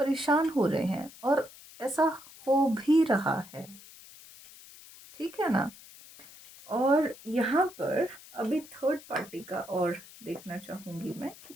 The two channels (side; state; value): left; noise; hiss, 19 dB below the sound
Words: हो रहे हैं, और ऐसा हो भी रहा है। ठीक है ना। और यहाँ पर अभी थर्ड पार्टी का और देखना चाहूँगी मैं कि